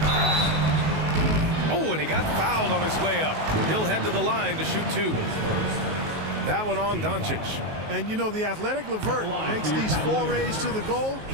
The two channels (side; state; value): left; late; 19 ms